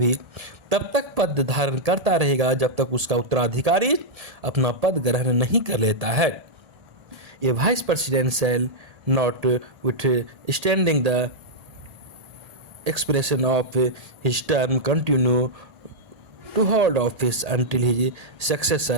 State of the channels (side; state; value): left; late; 1.8 ms